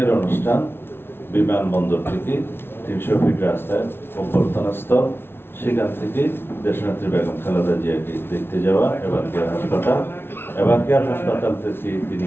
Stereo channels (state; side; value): late; right; 0.11 ms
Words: অনুষ্ঠান বিমানবন্দর থেকে 300 ফিট রাস্তায় অভ্যর্থনাস্থল, সেখান থেকে দেশনেত্রী বেগম খালেদা জিয়াকে দেখতে যাওয়া এবারকেয়ার হাসপাতাল, এবারকেয়ার হাসপাতাল থেকে